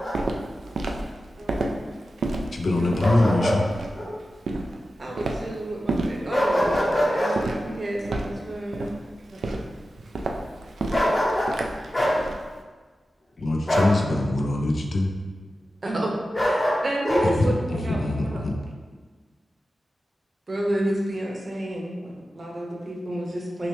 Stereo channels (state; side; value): normal; both; correlation 0.93